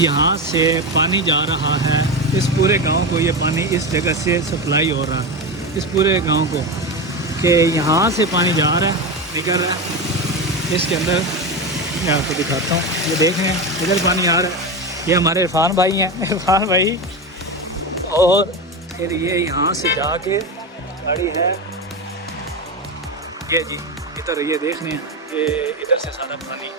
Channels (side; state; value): both; normal; correlation 0.18